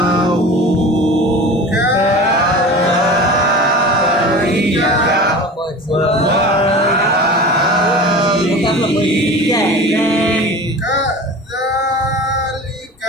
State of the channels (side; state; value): both; normal; correlation 0.36